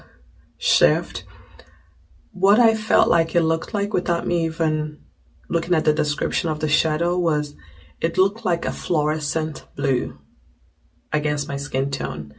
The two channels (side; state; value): both; identical; correlation 1.00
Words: shift. What I felt like it looked like without me even looking at the description of the shadow was it looked like a fluorescent blue against my skin tone.